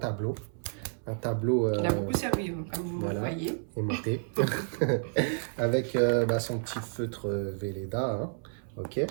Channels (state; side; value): silent; left; 57 dB below the other